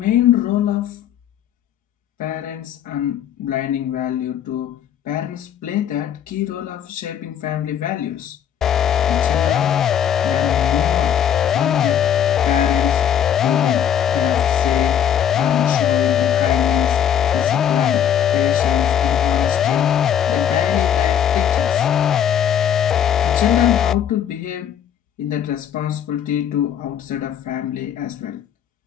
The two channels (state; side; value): quieter; right; 9.2 dB